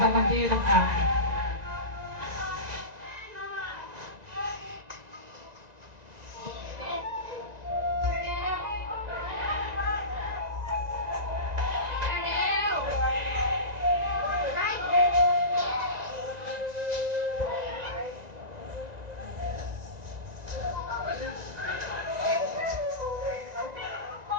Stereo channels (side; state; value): left; late; 1.9 ms